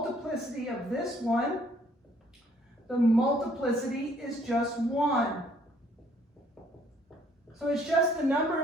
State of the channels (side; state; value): both; normal; correlation 0.63